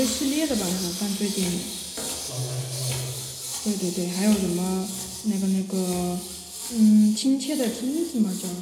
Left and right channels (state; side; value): identical; both; correlation 1.00